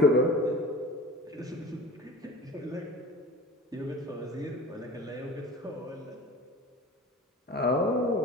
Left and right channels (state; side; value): normal; both; correlation 0.37